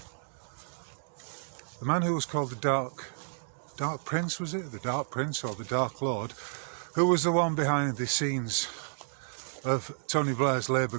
the man who was called the Dark Prince, was it? The Dark Prince or the Dark Lord, who was the one behind the scenes of Tony Blair's Labour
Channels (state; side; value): silent; left; digital silence